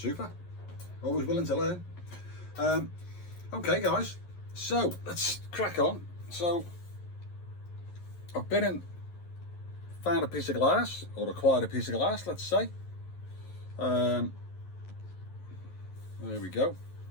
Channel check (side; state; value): right; late; 11 ms